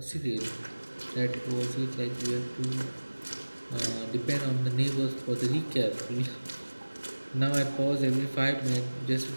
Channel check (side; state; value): both; inverted; correlation -1.00